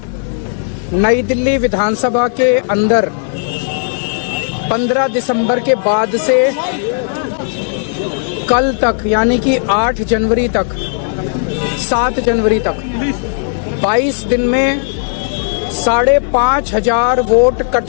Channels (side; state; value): right; silent; 61 dB below the other